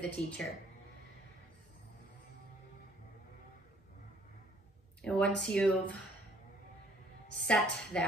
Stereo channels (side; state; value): both; normal; correlation 0.61